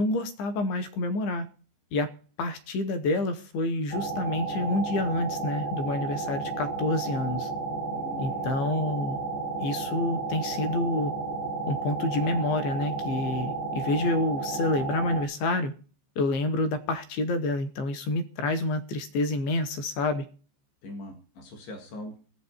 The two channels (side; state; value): right; late; 14 ms